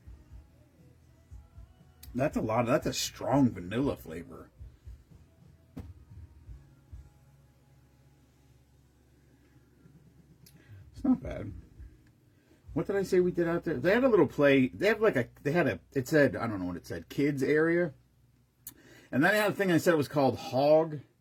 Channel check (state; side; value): identical; both; correlation 1.00